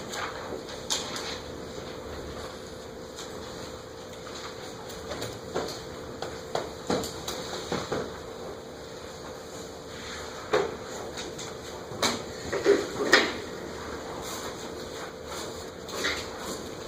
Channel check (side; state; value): both; identical; correlation 1.00